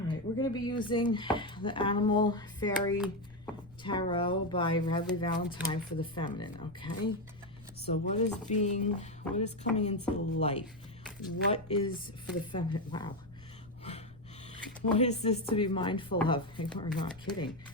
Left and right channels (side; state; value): left; noise; rumble, 23 dB below the sound